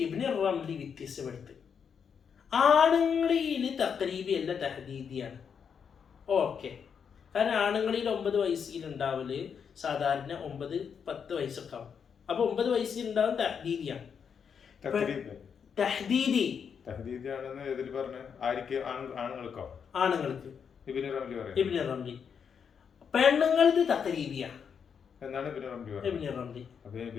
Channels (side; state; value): right; quieter; 7.0 dB